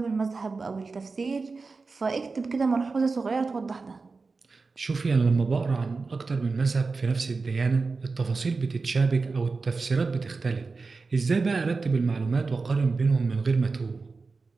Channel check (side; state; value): left; quieter; 4.2 dB